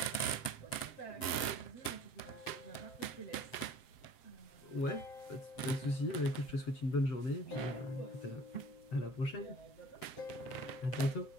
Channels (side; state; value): right; late; 7.8 ms